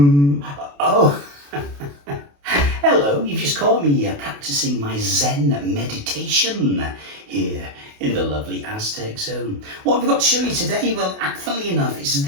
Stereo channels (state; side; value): late; left; 28 ms